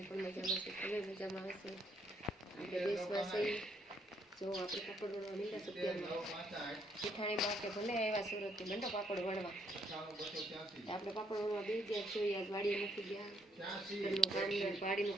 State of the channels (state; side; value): normal; both; correlation 0.70